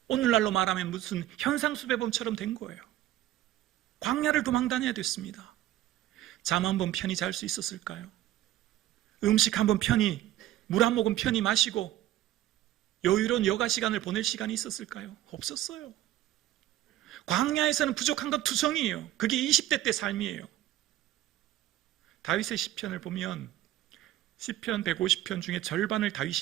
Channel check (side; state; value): left; quieter; 13.8 dB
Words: 오늘날로 말하면 무슨 현상수배범처럼 된 거예요. 광야를 도망다녀야 됐습니다. 잠 한 번 편히 잘 수 있었을까요? 음식 한 번 편히, 물 한 모금 편히 마시고 여유로운 여가 시간을 보낼 시간이 있었을까요? 없었어요. 광야에서는 부족한 건 투성이에요. 그게 20대 때 삶이에요. 다윗의 시편을 보면 시편 150편 중에 절반을